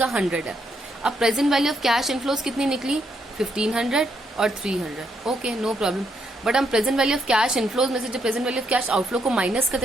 100 है। अब present value of cash inflows कितनी निकली, 1500 और 300। Okay, no problem. बट हम present value of cash inflows में से जब present value of cash outflow को माइनस करते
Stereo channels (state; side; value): normal; both; correlation 0.76